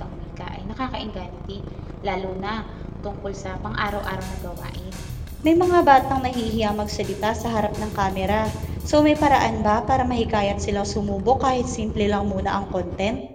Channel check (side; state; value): both; identical; correlation 1.00